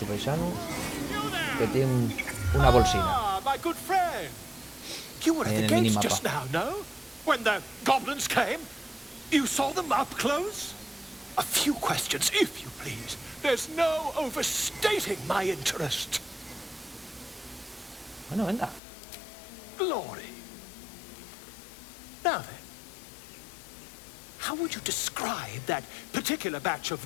paisano que tiene una bolsina. You were Ahí at en the el gates minimapa. just now, no? When the goblins came? You saw them up close? A few questions, if you please. There's no overstating my interest. Bueno, venga. Glory. Now then, how would you describe that particular batch of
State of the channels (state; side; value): drops out; right; at 18.8 s